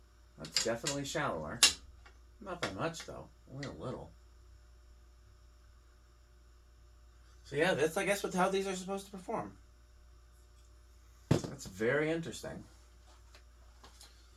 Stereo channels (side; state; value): both; identical; correlation 1.00